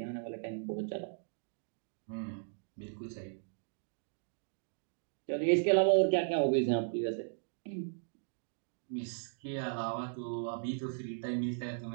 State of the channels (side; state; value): left; silent; digital silence